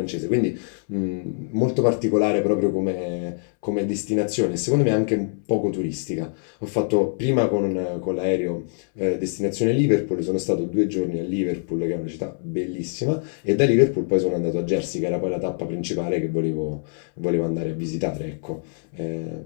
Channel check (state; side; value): silent; right; 63 dB below the other